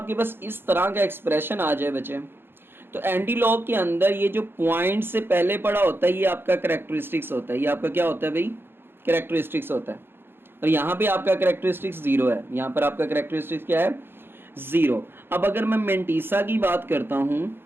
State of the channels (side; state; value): left; late; 0.10 ms